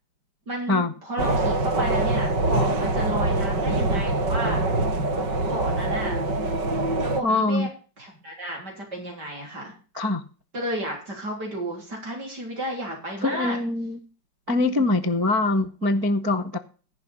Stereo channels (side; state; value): left; late; 5.3 ms